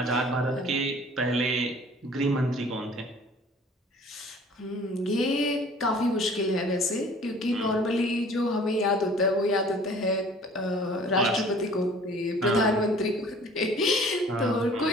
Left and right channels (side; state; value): both; normal; correlation 0.50